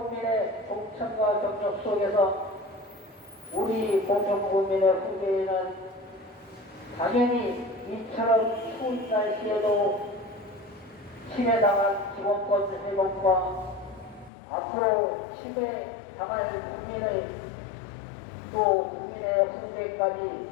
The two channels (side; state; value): right; drops out; at 14.3 s